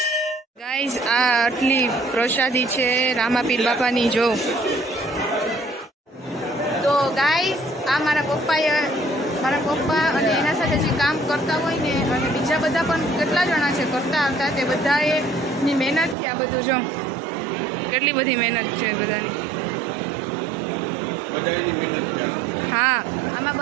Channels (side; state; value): left; drops out; at 16.2 s